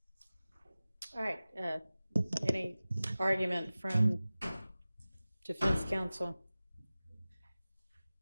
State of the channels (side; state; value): both; inverted; correlation -0.97